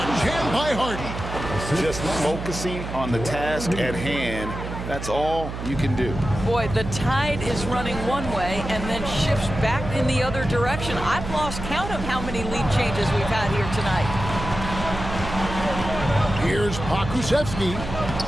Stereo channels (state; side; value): noise; right; hum, 7 dB below the sound